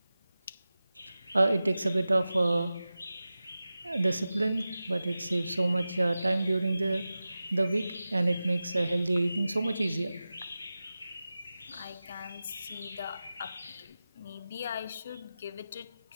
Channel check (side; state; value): both; inverted; correlation -0.95